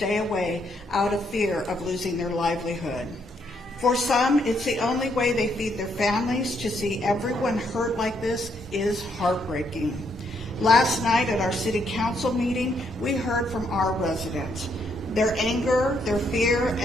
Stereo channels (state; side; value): normal; both; correlation 0.74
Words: away out of fear of losing their livelihood. For some, it's the only way they feed their families. To see everyone hurt like this is heartbreaking. Last night at our city council meeting, we heard from our residents. Their anger, their fear,